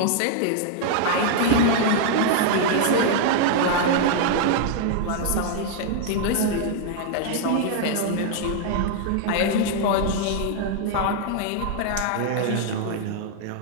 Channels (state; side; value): different; both; correlation 0.00